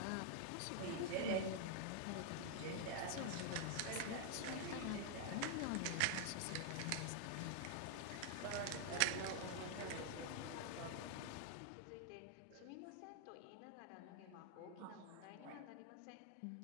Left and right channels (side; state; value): both; different; correlation 0.00